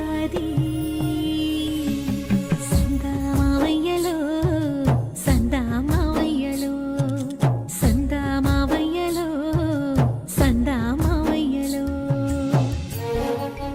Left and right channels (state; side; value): identical; both; correlation 1.00